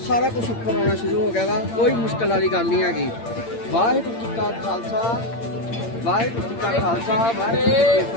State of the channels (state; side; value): late; right; 8.7 ms